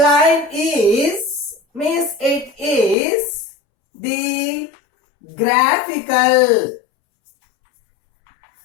means it is the graphical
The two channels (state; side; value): drops out; right; at 3.0 s